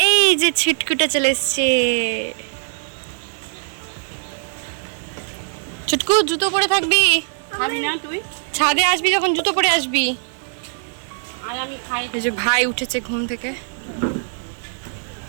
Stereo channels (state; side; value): silent; left; digital silence